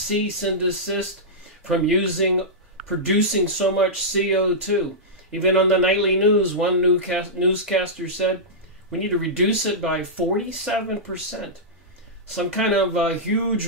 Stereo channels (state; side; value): normal; both; correlation -0.12